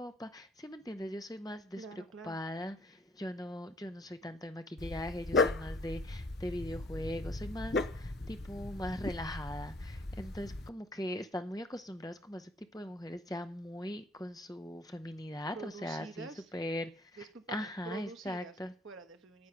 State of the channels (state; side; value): normal; both; correlation 0.60